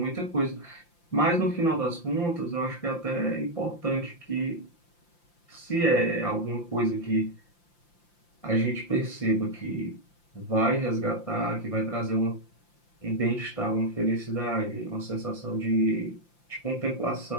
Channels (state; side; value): late; right; 5.8 ms